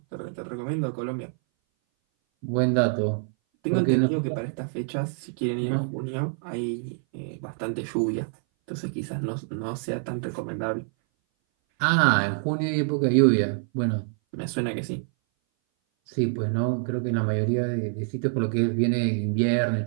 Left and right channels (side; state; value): left; silent; 59 dB below the other